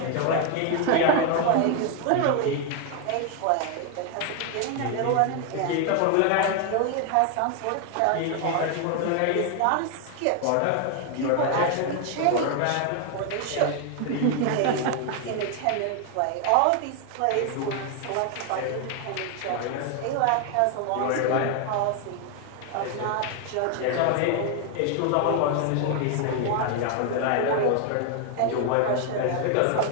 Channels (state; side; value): different; both; correlation 0.01